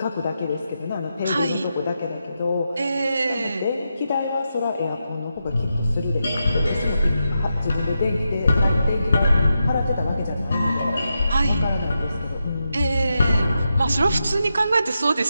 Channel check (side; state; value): both; inverted; correlation -0.87